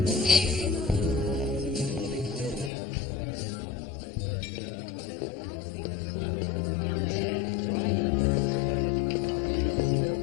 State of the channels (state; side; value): drops out; right; at 2.7 s